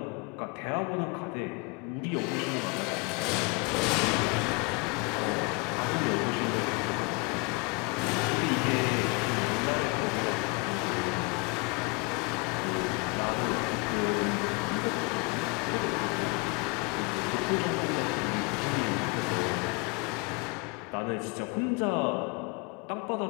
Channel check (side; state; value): right; quieter; 29.9 dB